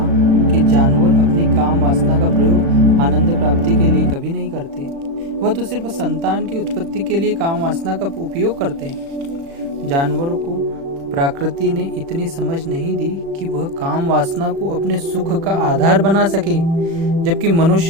कि जानवर अपनी काम वासना का प्रयोग आनंद प्राप्ति के लिए कभी नहीं करते, वह तो सिर्फ संतान की उत्पत्ति के लिए काम वासना का उपयोग करते हैं। जानवरों को प्रकृति ने इतनी समझ नहीं दी कि वह काम वासना को अपने सुख का आधार बना सके, जबकि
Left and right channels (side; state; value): left; late; 36 ms